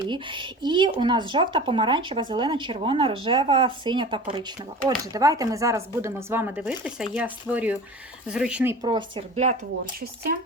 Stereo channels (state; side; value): normal; both; correlation 0.37